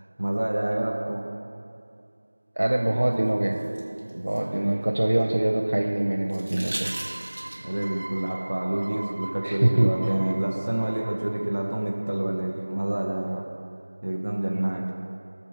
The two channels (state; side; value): inverted; both; correlation -1.00